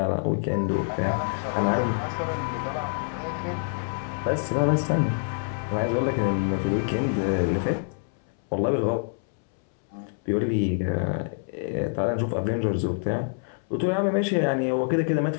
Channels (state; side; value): silent; right; 61 dB below the other